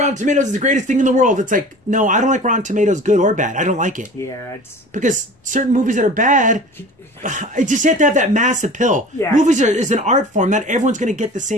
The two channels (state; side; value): normal; both; correlation 0.40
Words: Tomatoes is the greatest thing in the world. It's like, no, I don't like Rotten Tomatoes, good or bad. I don't like it. Yeah, it's... Because certain movies that are bad, I just have to have that mass appeal. Yeah. Movies is an art form. Not everyone's going to get the